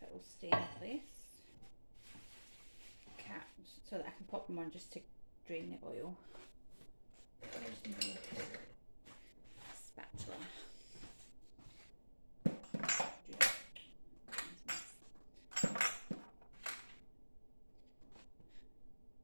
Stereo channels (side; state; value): both; inverted; correlation -1.00